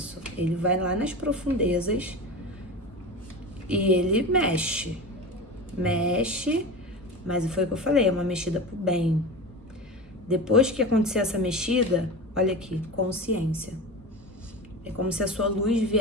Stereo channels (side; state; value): both; normal; correlation 0.28